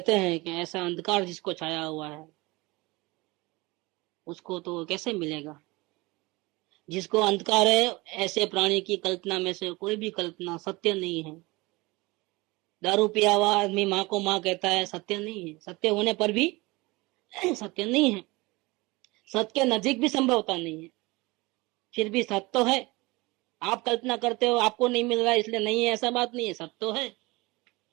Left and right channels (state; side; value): quieter; left; 23.2 dB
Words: हैं कि ऐसा अंधकार जिसको छाया हुआ है उसको तो कैसे मिलेगा? जिसको अंधकार है, ऐसे प्राणी की कल्पना में से कोई भी कल्पना सत्य नहीं है। दारू पिया हुआ आदमी माँ को माँ कहता है, सत्य नहीं है। सत्य होने पर भी सत्य नहीं है। सत्य के नजीक भी संभवता नहीं है, फिर भी सत्य तो है। आप कल्पना करते हो आपको नहीं मिल रहा है इसलिए नहीं है, ऐसा बात नहीं है। सत्य तो है,